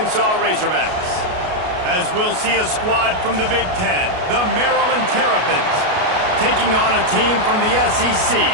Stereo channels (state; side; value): late; left; 33 ms